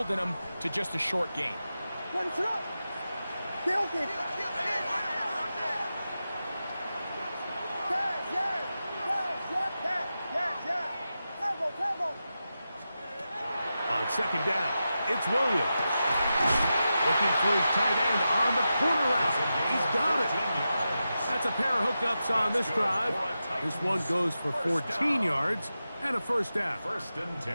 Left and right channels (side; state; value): both; inverted; correlation -0.91